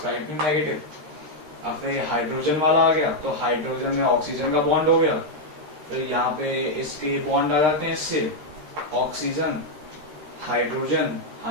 नेगेटिव। अब फिर ये हाइड्रोजन वाला आ गया, तो हाइड्रोजन में ऑक्सीजन का बॉन्ड हो गया, फिर यहाँ पे इसके बॉन्ड आ जाते हैं इससे, ऑक्सीजन हाइड्रोजन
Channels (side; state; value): left; late; 13 ms